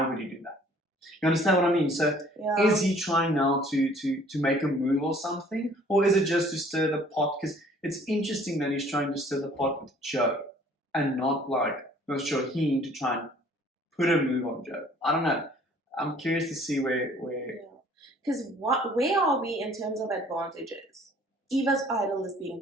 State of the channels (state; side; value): normal; both; correlation 0.55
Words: would he do that? You understand what I mean? So is he trying now to make a move or something? Or is it just to stir the pot? Because it's interesting that he's trying to stir the pot with Joe and not like with Shaheen to try and put a move on Joe. I don't know. I'm curious to see where because where are we in terms of advantages? Eva's idol is being